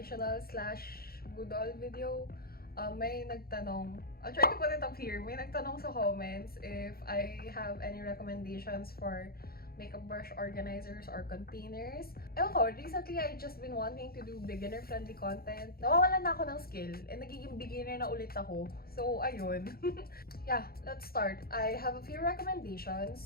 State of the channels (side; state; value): right; late; 0.44 ms